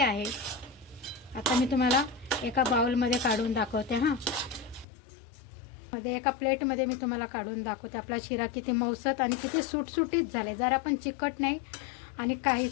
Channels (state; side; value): drops out; right; at 4.9 s